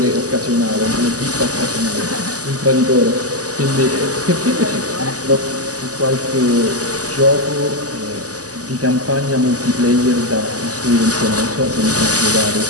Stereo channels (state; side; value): late; left; 0.67 ms